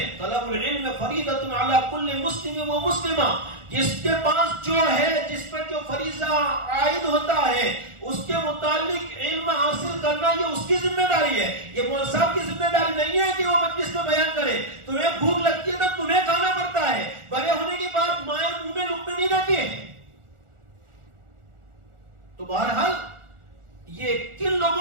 طلب العلم فریضۃ علی کل مسلم و مسلمہ. جس کے پاس جو ہے, جس پر جو فریضہ عائد ہوتا ہے, اس کے متعلق علم حاصل کرنا یہ اس کی ذمہ داری ہے. یہ مولوی صاحب کی ذمہ داری نہیں ہے کہ وہ مجلس میں بیان کرے. تمہیں بھوک لگتی ہے تو تمہیں کھانا پڑتا ہے, بڑے ہونے کے بعد مائیں منہ میں لقمے نہیں دیتی ہے. تو بہرحال یہ کن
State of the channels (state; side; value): late; left; 1.4 ms